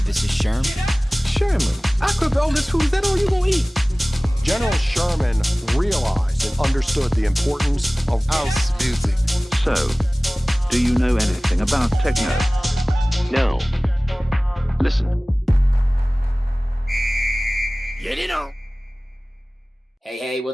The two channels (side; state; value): both; normal; correlation 0.98